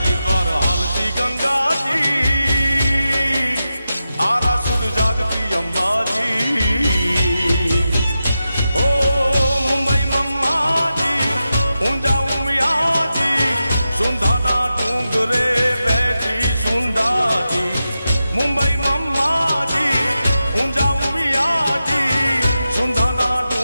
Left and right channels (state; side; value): inverted; both; correlation -0.91